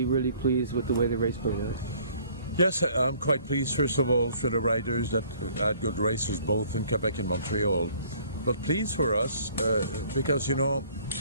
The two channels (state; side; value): inverted; both; correlation -0.57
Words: really pleased with the way the race played out. Yes, I'm quite pleased, first of all, for the riders that had good races both in Quebec and Montreal. But pleased for us because, you know,